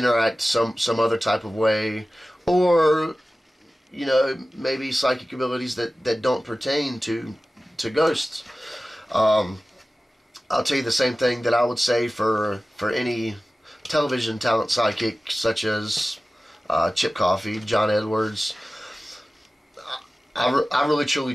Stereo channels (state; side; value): normal; both; correlation 0.96